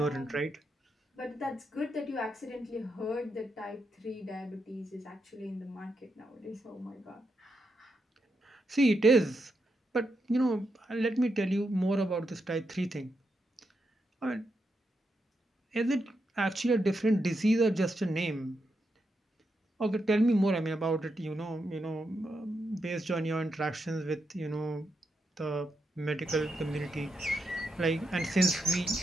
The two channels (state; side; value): normal; both; correlation 0.83